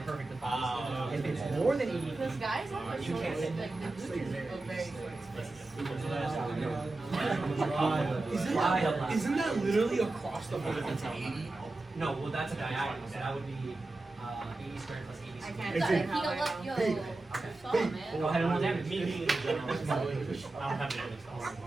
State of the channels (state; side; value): quieter; left; 3.0 dB